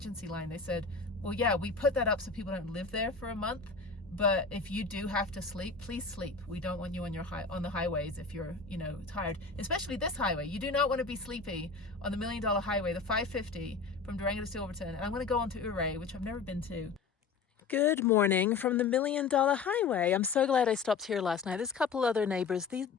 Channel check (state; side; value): quieter; right; 4.9 dB